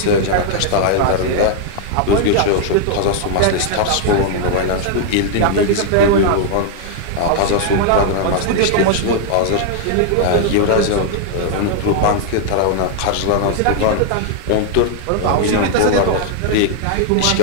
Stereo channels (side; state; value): both; different; correlation 0.00